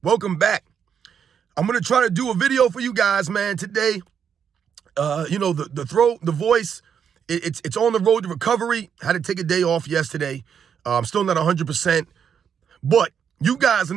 Welcome back. I'm going to try to do a video for you guys, man, today. The throat, the voice, it's on the road to recovery. Had to take a day off yesterday. I'm still not 100%. But you guys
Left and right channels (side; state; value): left; quieter; 7.7 dB